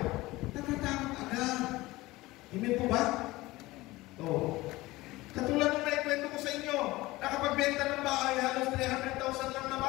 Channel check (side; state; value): right; quieter; 19.4 dB